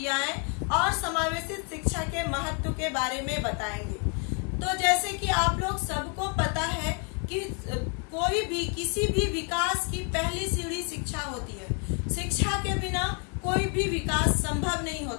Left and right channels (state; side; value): quieter; right; 36.4 dB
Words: और समावेशित शिक्षा के महत्व के बारे में बताएंगे। तो जैसे कि आप लोग सबको पता है कि कोई भी किसी भी विकास की पहली सीढ़ी शिक्षा होती है। शिक्षा के बिना कोई भी विकास संभव नहीं